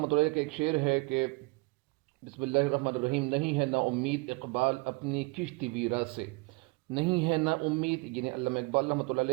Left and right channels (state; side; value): quieter; left; 27.8 dB